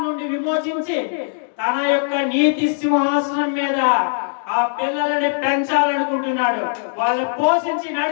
నుండి విమోచించి తన యొక్క నీతి సింహాసనం మీద ఆ పిల్లలని పెంచాలనుకుంటున్నాడు, వాళ్ళని పోషించి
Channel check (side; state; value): right; silent; digital silence